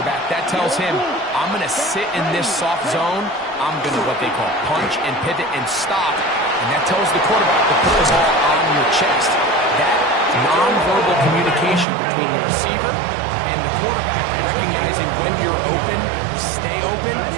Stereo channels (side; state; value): left; drops out; at 11.9 s